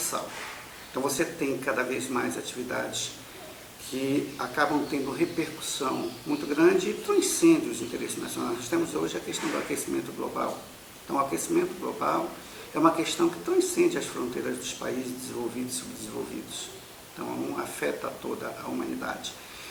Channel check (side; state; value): both; identical; correlation 1.00